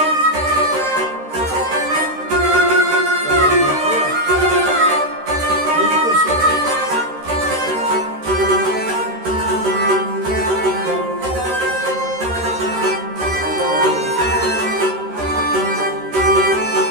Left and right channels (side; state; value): left; late; 13 ms